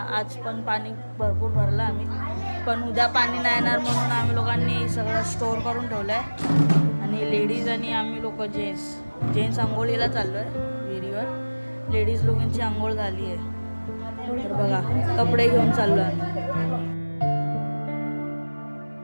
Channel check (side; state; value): both; inverted; correlation -1.00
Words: आज पण पाणी भरपूर भरलं आम्ही, पण उद्या पाणी नाही येणार म्हणून आम्ही लोकांनी सगळं स्टोअर करून ठेवलं आहे. आणि लेडीज आणि आम्ही लोक जेंट्स आंघोळीला चाललो आहे विहिरीवर. लेडीज लोकांची आंघोळ झाली आहे तर बघा कपडे घेऊन चाललो आम्ही.